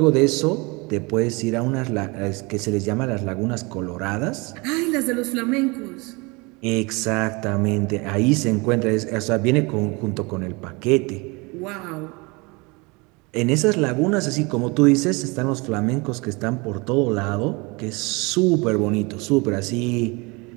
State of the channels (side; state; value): left; quieter; 27.0 dB